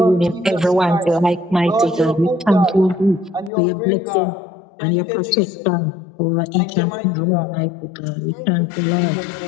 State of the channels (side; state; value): right; drops out; at 3.5 s